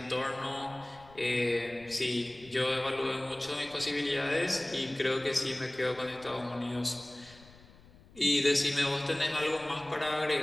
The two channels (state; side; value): noise; left; rumble, 24 dB below the sound